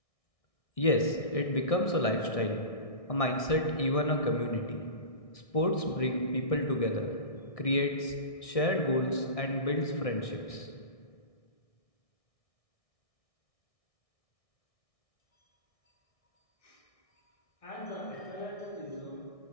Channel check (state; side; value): late; right; 1.6 ms